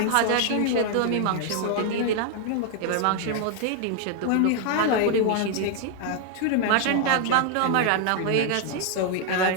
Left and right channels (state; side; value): different; both; correlation 0.00